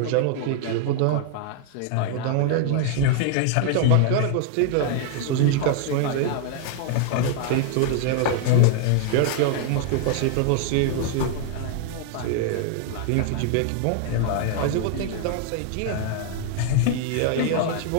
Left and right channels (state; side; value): different; both; correlation 0.00